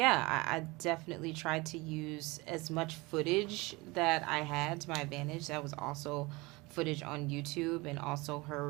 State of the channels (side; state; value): left; quieter; 23.7 dB